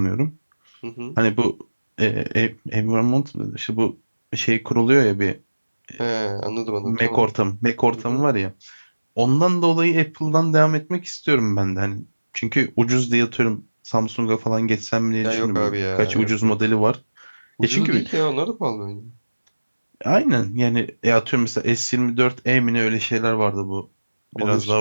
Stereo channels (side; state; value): both; inverted; correlation -1.00